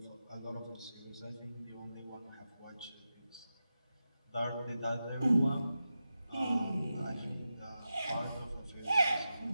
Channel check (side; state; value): both; inverted; correlation -0.91